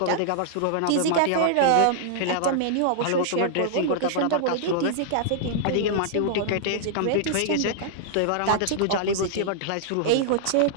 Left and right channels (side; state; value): both; different; correlation -0.01